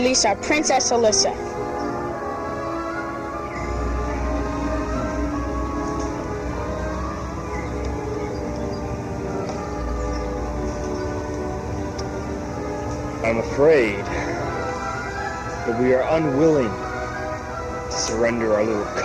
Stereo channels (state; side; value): identical; both; correlation 1.00